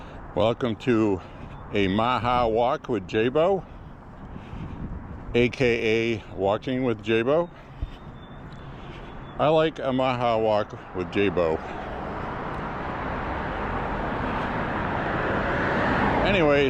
Welcome to a MAHA walk with J.Beau, aka walking with J.Beau. I like a MAHA walk with J.Beau.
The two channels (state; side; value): identical; both; correlation 1.00